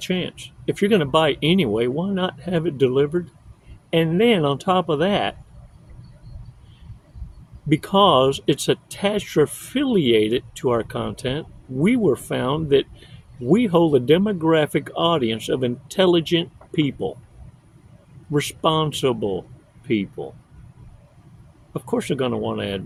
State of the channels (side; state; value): both; identical; correlation 1.00